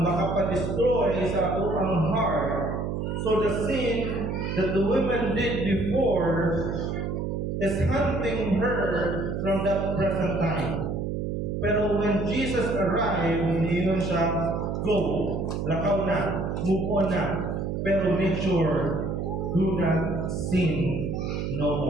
makapadestroy sa atong heart. So the sin that the women did before is hunting her from that present time. Pero when Jesus arrived, niyon siya, "Go, lakaw na, move on na, pero make sure, do not sin no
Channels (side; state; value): right; noise; hum, 2 dB below the sound